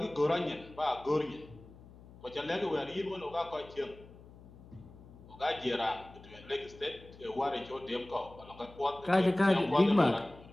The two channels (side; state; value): left; noise; hum, 20 dB below the sound